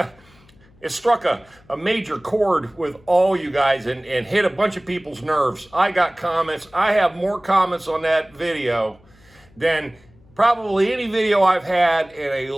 it struck a major chord with all you guys and hit a bunch of people's nerves. I got comments. I have more comments on that video than probably any video I've had in a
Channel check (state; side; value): noise; left; hum, 29 dB below the sound